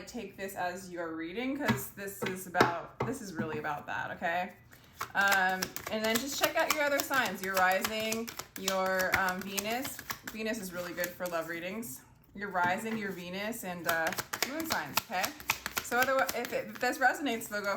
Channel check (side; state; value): both; identical; correlation 1.00